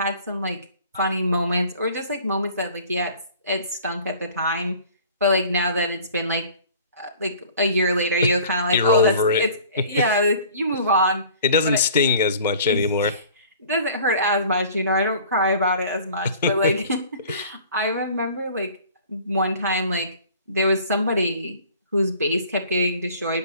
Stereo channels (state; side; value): inverted; both; correlation -0.48